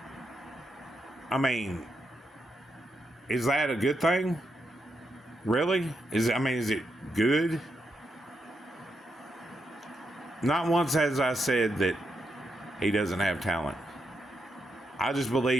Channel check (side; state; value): both; normal; correlation 0.83